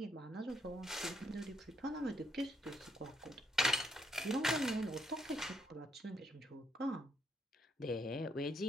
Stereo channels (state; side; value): normal; both; correlation 0.75